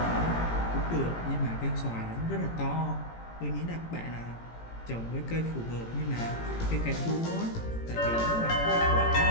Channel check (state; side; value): late; right; 18 ms